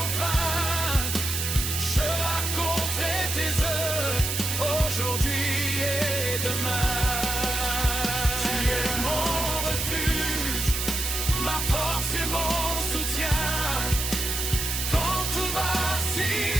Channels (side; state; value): right; noise; hiss, 2 dB below the sound